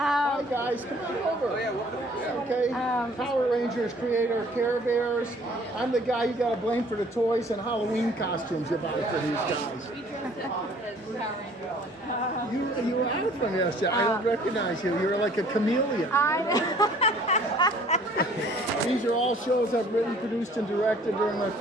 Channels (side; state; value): both; normal; correlation 0.55